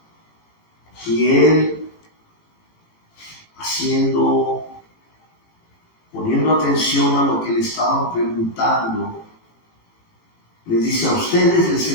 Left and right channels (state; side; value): late; right; 18 ms